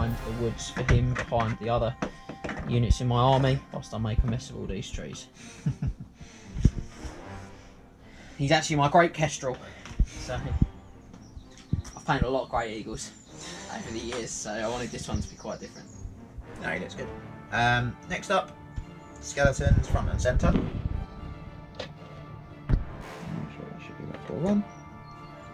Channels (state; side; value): identical; both; correlation 1.00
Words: the woods for him, behind the other units in my army, whilst I make a mess of all these trees. He's actually my great kestrel, so I've painted a lot of great eagles over the years, so I wanted this one to be quite different. No, he looks good. Next up, skeletons front and centre. I'm sure it should be about 4-1.